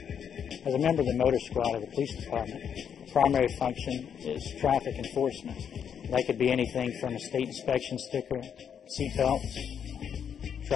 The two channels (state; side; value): quieter; right; 8.0 dB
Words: As a member of the motor squad of the police department, the primary function is traffic enforcement. That could be anything from a state inspection sticker, seat belts,